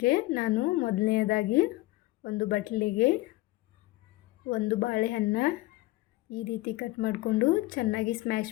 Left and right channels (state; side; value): quieter; right; 18.9 dB